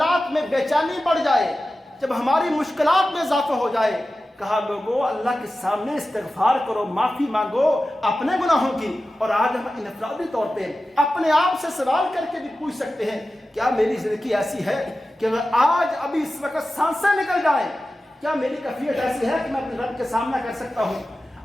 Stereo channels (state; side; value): normal; both; correlation 0.94